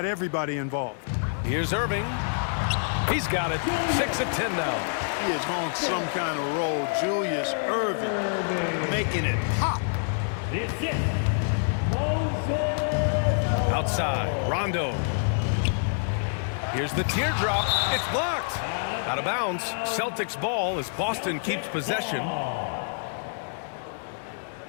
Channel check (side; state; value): right; silent; digital silence